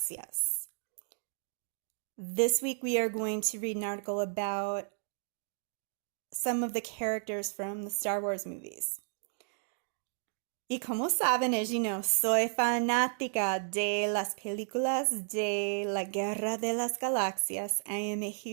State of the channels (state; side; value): silent; left; digital silence